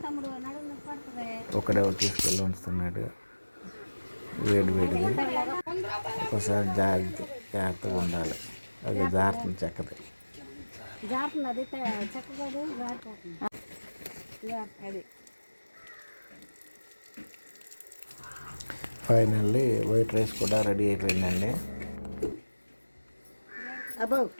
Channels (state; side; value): inverted; both; correlation -1.00